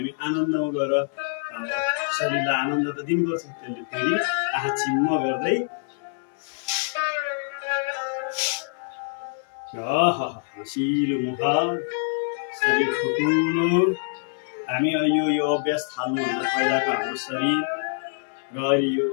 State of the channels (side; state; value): right; silent; 62 dB below the other